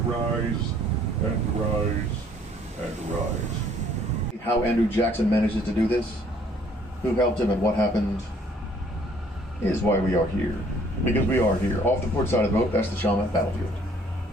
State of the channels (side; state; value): both; normal; correlation 0.60